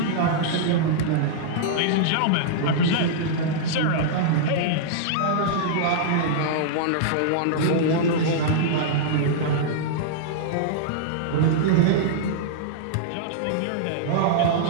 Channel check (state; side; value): different; both; correlation -0.02